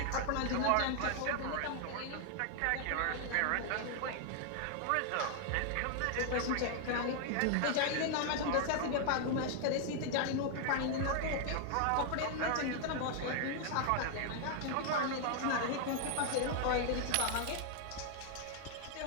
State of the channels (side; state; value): both; different; correlation 0.00